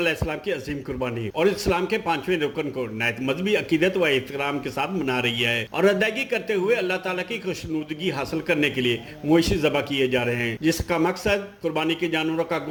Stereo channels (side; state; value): both; identical; correlation 1.00